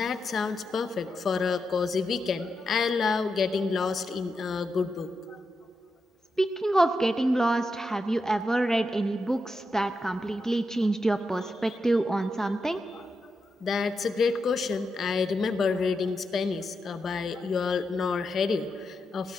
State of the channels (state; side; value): normal; both; correlation 0.86